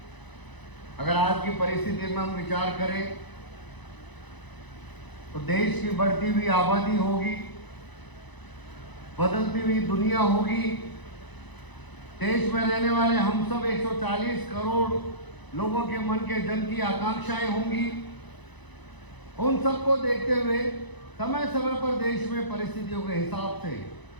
अगर आज की परिस्थिति में हम विचार करें तो देश की बढ़ती हुई आबादी होगी, बदलती हुई दुनिया होगी, देश में रहने वाले हम सब 140 करोड़ लोगों के मन के जन की आकांक्षाएं होंगी. उन सबको देखते हुए समय समय पर देश में परिस्थितियों के हिसाब से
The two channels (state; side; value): late; right; 1.0 ms